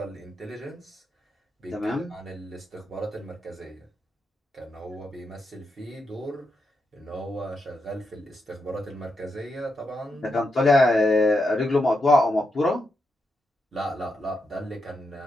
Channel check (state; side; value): normal; both; correlation 0.84